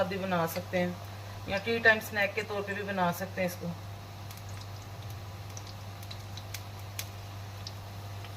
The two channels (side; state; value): both; identical; correlation 1.00